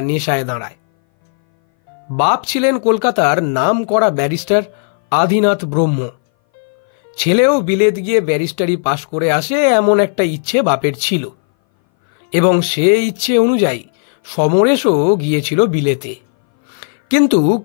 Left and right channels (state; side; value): silent; right; 61 dB below the other